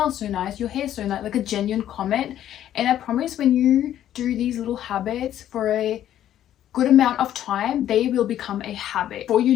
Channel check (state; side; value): quieter; right; 11.5 dB